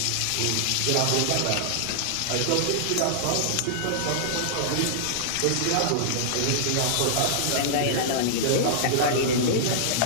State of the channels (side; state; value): both; different; correlation -0.02